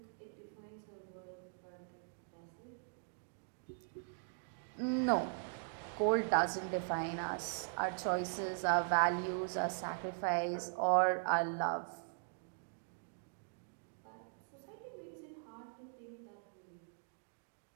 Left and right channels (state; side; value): silent; left; digital silence